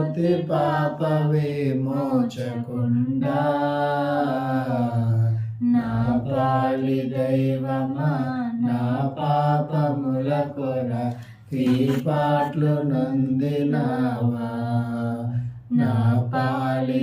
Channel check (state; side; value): identical; both; correlation 1.00